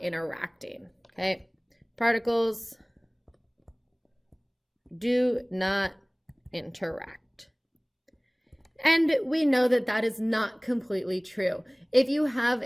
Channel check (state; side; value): identical; both; correlation 1.00